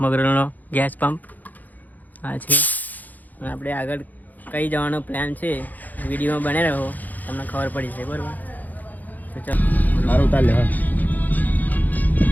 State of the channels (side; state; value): right; late; 0.082 ms